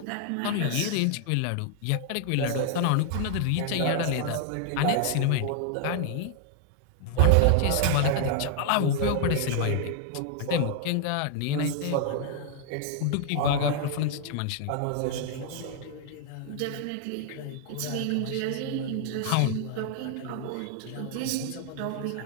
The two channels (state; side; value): different; both; correlation 0.00